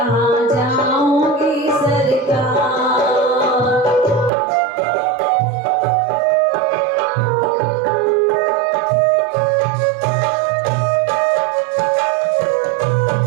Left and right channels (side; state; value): left; drops out; at 4.3 s